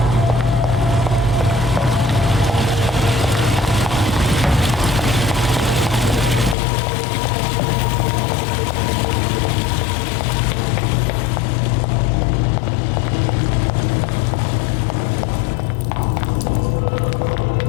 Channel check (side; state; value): right; drops out; at 6.6 s